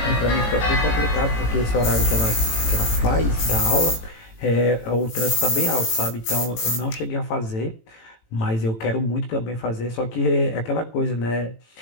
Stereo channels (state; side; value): late; right; 18 ms